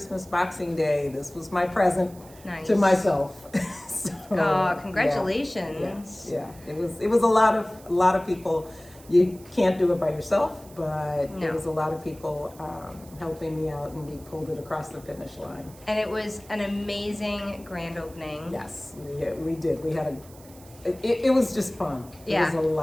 Boxing Day. This was my present to myself. So, oh, congratulations! Yeah. It was a lot of people. You can't do it by yourself, but No. There was a lot of people helping me out, and we pulled it across the finish line. And it was an amazing grand opening. Yes, we did. We had it was just fun. Yeah. It was a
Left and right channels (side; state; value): right; noise; hiss, 23 dB below the sound